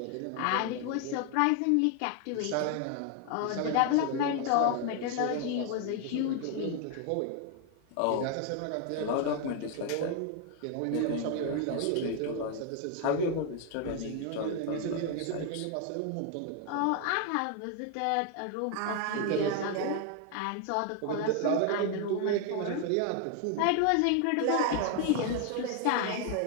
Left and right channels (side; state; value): both; different; correlation 0.00